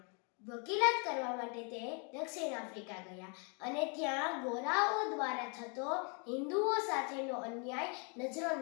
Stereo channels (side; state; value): right; quieter; 36.4 dB